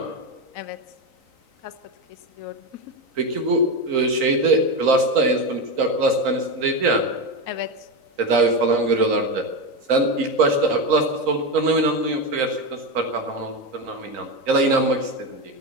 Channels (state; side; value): late; left; 3.9 ms